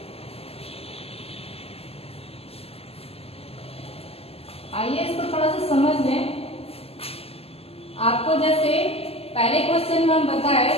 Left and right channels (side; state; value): right; late; 0.29 ms